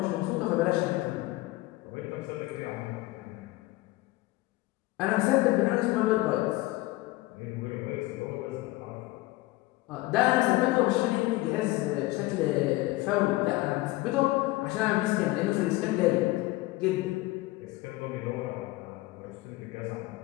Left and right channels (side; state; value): right; quieter; 19.4 dB